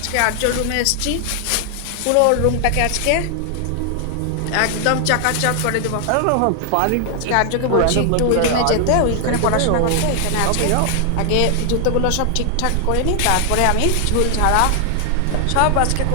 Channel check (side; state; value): both; different; correlation 0.00